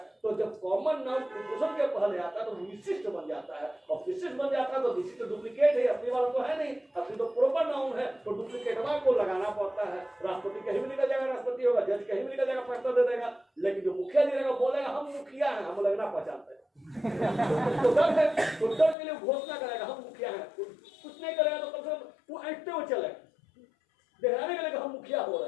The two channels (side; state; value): right; drops out; at 18.9 s